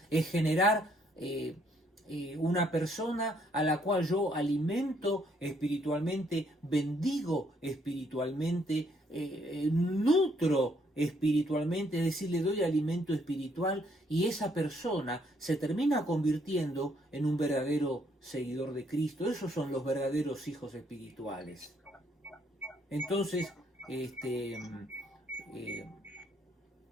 es generar una persona a la cual yo alimento espiritualmente, bendigo espiritualmente, nutro espiritualmente, es decir, le doy alimento espiritual, y esa persona se termina convirtiendo en un verdadero seguidor de Cristo. Esos son los verdaderos hijos espirituales. Entonces,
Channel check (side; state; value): both; normal; correlation 0.69